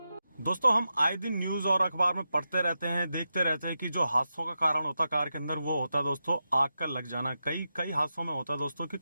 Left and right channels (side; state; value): both; inverted; correlation -0.88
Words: दोस्तों, हम आए दिन न्यूज और अखबार में पढ़ते रहते हैं, देखते रहते हैं कि जो हादसों का कारण होता है कार के अंदर, वो होता है दोस्तों आग का लग जाना। कई हादसों में होता है दोस्तों कि